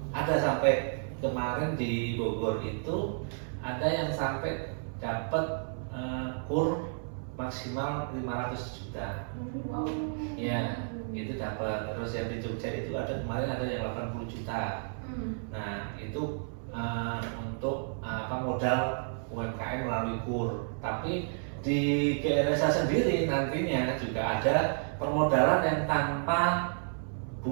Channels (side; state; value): left; silent; 57 dB below the other